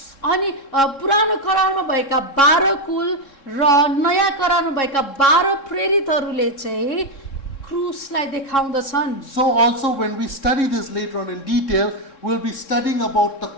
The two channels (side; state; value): right; late; 3.7 ms